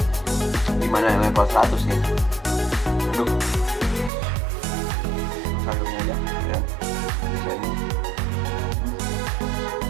Gimana yang level 100 nih? Aduh, sayurnya aja ya. Bisa ini.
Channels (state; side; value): drops out; left; at 4.1 s